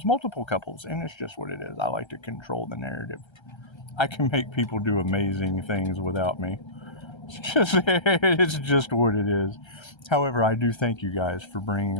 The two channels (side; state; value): right; late; 1.3 ms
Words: multiple couples, and it's just what it is. I like to control the narrative. I can make people do amazing things without me. It's just what it is. However, I do thank you guys for bringing